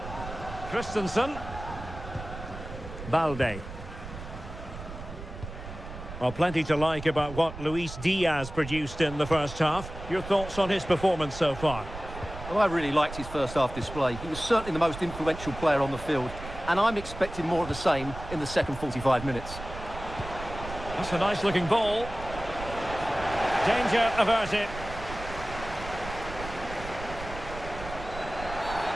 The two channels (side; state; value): right; noise; rumble, 11 dB below the sound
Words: Christensen. Balde. Well, plenty to like about what Luis Diaz produced in the first half. Your thoughts on his performance so far? Well, I really liked his first half display. He was certainly the most influential player on the field, and I'm expecting more of the same in the second 45 minutes. That's a nice-looking ball. Danger averted.